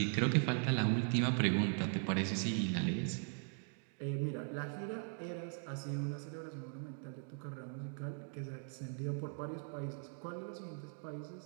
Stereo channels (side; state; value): left; silent; 51 dB below the other